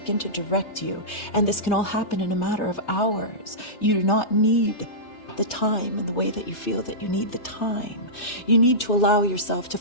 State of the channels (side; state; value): right; late; 3.3 ms